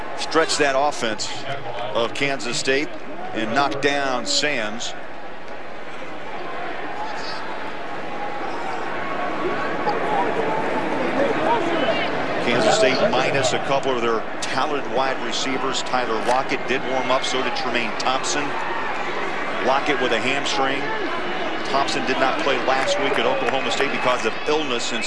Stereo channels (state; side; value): identical; both; correlation 1.00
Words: stretched that offense of Kansas State and knocked down Sams. Kansas State minus a couple of their talented wide receivers. Tyler Lockett did warm up, so did Tremaine Thompson. Lockett with a hamstring. Thompson did not play last week at Oklahoma State because of illness, and